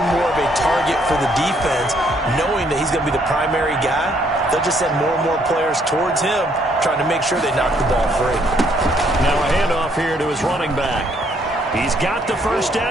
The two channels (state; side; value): normal; both; correlation 0.68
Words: more of a target for the defense, knowing that he's going to be the primary guy. They'll just send more and more players towards him, trying to make sure they knock the ball free. Now a handoff here to his running back. He's got the first